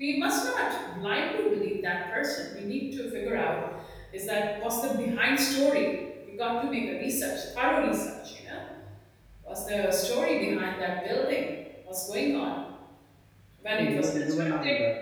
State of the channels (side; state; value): both; identical; correlation 1.00